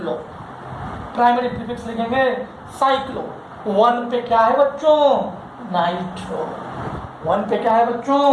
प्राइमरी प्रीफिक्स लिखेंगे साइक्लो। 1 पे क्या है बच्चों, नाइट्रो, 1 पे क्या है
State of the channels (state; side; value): identical; both; correlation 1.00